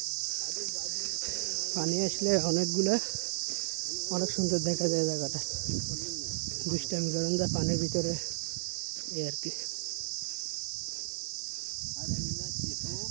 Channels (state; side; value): silent; left; 56 dB below the other